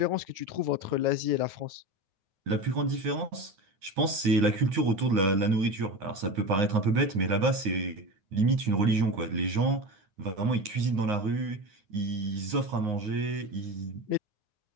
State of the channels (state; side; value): late; left; 9.6 ms